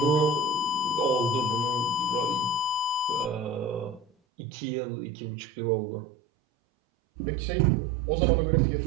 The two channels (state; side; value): drops out; left; at 4.1 s